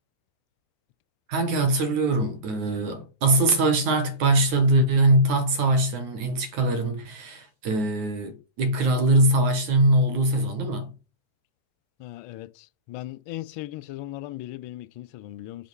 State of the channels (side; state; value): left; late; 9.4 ms